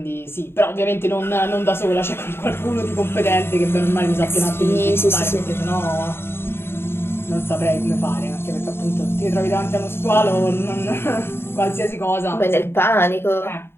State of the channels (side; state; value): right; late; 0.11 ms